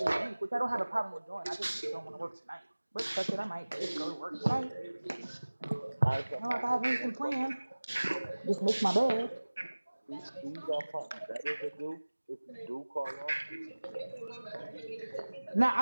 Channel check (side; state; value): both; inverted; correlation -1.00